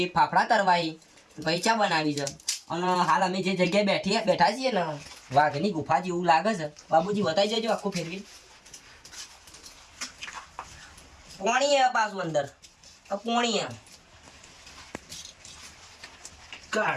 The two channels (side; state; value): both; identical; correlation 1.00